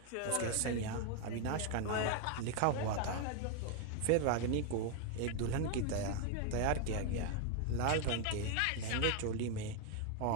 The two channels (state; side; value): different; both; correlation 0.01